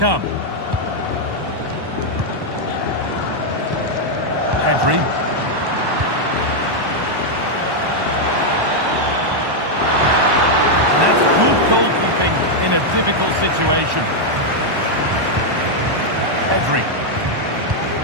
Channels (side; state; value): left; late; 1.1 ms